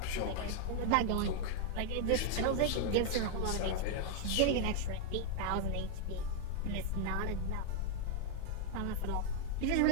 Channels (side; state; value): both; different; correlation 0.00